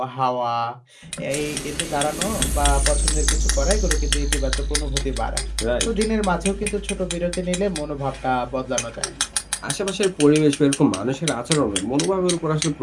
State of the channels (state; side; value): identical; both; correlation 1.00